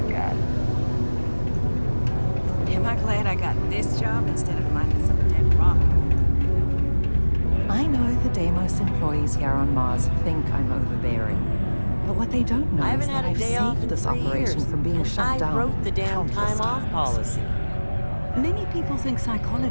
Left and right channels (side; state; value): both; inverted; correlation -1.00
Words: got. Am I glad I got this job instead of minding some dead rock? I know the Deimos employees here on Mars think I'm overbearing. But what they don't know I is haven't that had a I've day off saved in this 3 operation years, from being and shut down. I wrote the damn countless time off times. policy. Many people think